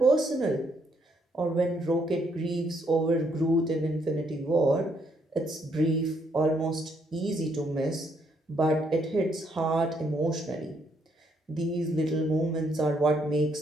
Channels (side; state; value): both; normal; correlation 0.72